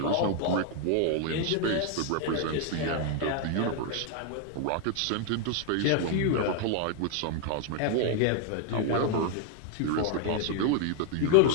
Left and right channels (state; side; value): different; both; correlation 0.00